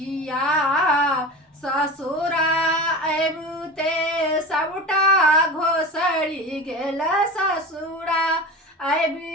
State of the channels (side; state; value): both; normal; correlation 0.31